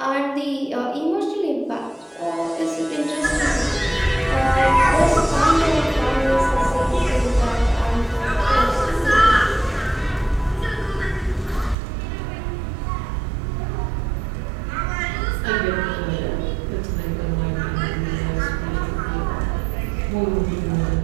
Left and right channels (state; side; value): drops out; left; at 11.8 s